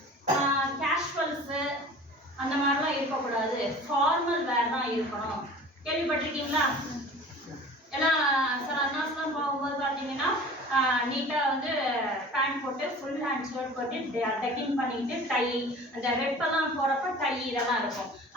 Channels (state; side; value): normal; both; correlation 0.42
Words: கேஷுவல்ஸு அந்த மாதிரிலாம் இருக்கக்கூடாது, ஃபார்மல் வேர் தான் இருக்கணும். கேள்விப்பட்டிருக்கீங்களா? ஏன்னா சில அண்ணாஸ்லாம் போகும்போது பார்த்தீங்கன்னா நீட்டாக வந்து பேண்ட் போட்டு ஃபுல் ஹேண்ட் ஷர்ட் போட்டு டக்கிங் பண்ணிக்கிட்டு டை, அந்த ரெப்பெல்லாம் போகிறப்ப டை இதெல்லாம் இருக்கும்.